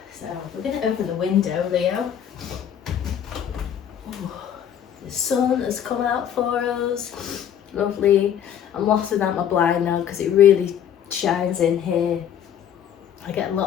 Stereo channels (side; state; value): right; quieter; 9.3 dB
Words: So we're going to open the window, Leo. Ooh, the sun has come out for us. Lovely. I'm lofting out my blind now because it really shines in here. I get